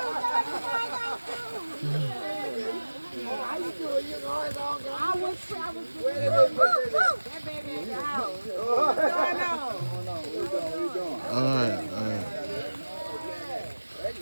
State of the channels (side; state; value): both; inverted; correlation -1.00